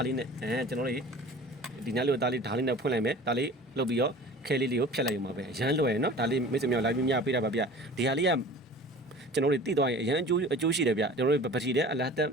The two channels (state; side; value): normal; both; correlation 0.42